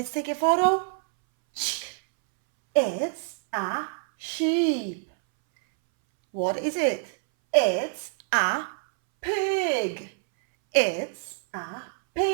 take a photo. It's a sheep. What is it? It's a pig. It's a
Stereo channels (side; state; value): left; silent; 61 dB below the other